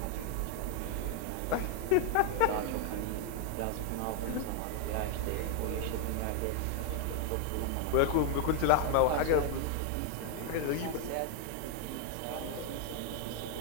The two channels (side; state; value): both; different; correlation 0.00